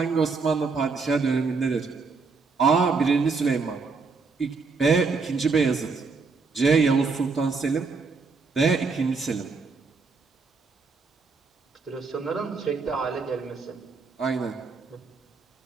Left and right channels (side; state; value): left; quieter; 4.6 dB